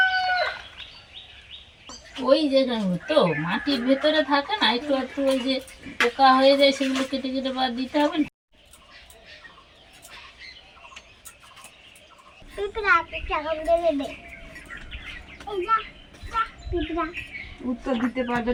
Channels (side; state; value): both; identical; correlation 1.00